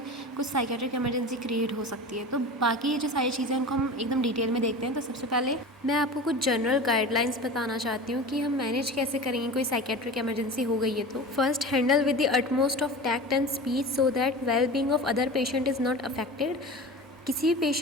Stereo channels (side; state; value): both; normal; correlation 0.32